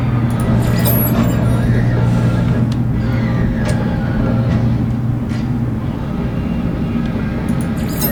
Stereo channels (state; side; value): identical; both; correlation 1.00